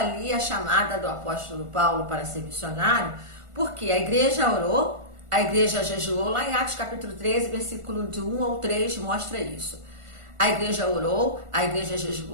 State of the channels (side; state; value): left; late; 1.5 ms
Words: a chamada do apóstolo Paulo para ser missionário, porque a igreja orou, a igreja jejuou, lá em Atos capítulo 13, versículo de 1 ao 3, mostra isso. A igreja orou, a igreja